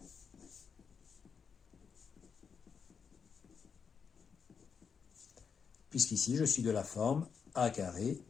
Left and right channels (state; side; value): quieter; right; 6.2 dB